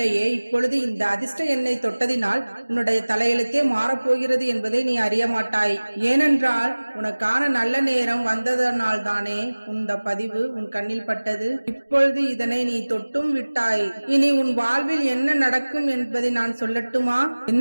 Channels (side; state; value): both; inverted; correlation -1.00